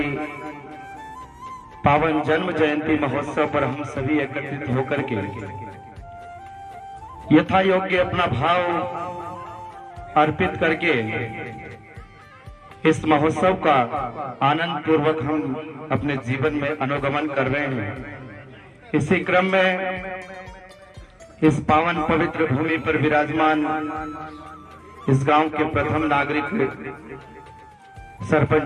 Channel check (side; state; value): both; identical; correlation 1.00